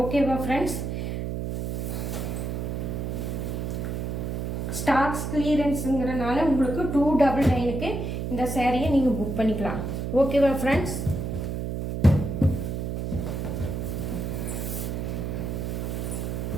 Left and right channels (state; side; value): noise; right; hum, 3 dB below the sound